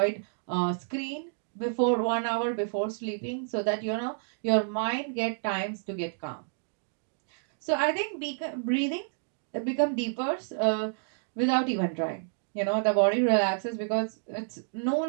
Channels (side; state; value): left; silent; digital silence